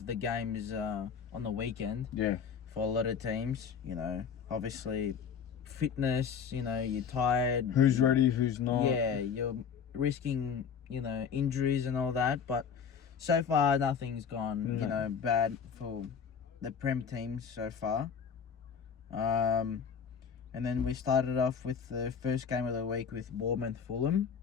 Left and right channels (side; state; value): right; quieter; 6.8 dB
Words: the games on the weekend. Yeah. For a lot of teams, obviously. Fitness, you're tired. Who's ready, who's not. Yeah, you're risking, injuries and all that. But so far, nothing's gone, bad for the Prem teams so far. And then we started off with the first game of the week with Bournemouth Fulham.